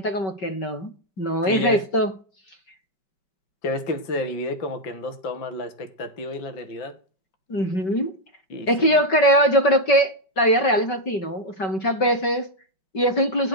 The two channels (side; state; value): right; late; 5.2 ms